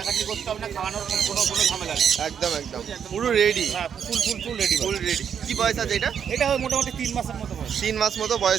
করতে হবে না, খাওয়ানোর কোনো ঝামেলা নেই। একদম একদম পুরো রেডি, হ্যাঁ ফুল ফুল ফুল রেডি। Full ready. কি বয়স আছে এটা? এটা মোটামুটি 3 মাসের মতো বয়স। 3 মাস মতো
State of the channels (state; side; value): quieter; left; 7.9 dB